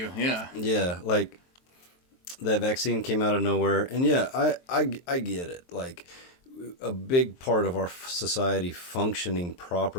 Yeah. Yeah, that vaccine came out of nowhere, and yeah, I get it. A big part of our society functioning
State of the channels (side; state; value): right; late; 23 ms